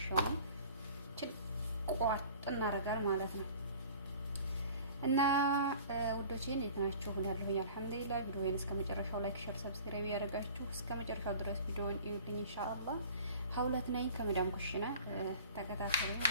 ቋጥ እናደርጋለን ማለት ነው። እና ውዶቼ እንዴት ናችሁ? ያለሁኝ አልሐምዱሊላህ። ቪዲዮውን እስከ መጨረሻው ላይክ፣ ሼር፣ ሰብስክራይብ ያደርጋችሁ እስከ መጨረሻው ድረስ ቪዲዮውን እዩልኝ ኢንሻአላህ። ሀውለት ነኝ ከመዳም ኩሽና ተከታተሉኝ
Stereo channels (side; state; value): both; inverted; correlation -0.45